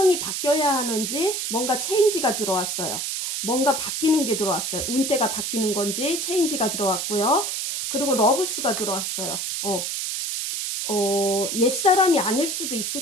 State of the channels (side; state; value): right; noise; hiss, 2 dB below the sound